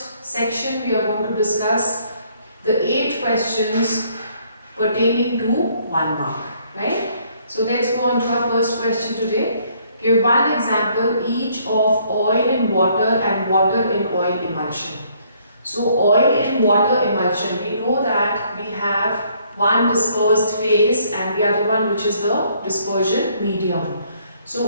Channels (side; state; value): both; inverted; correlation -0.66